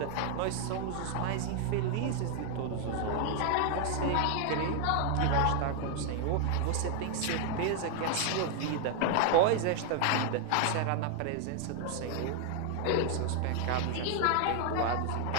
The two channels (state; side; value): different; both; correlation 0.00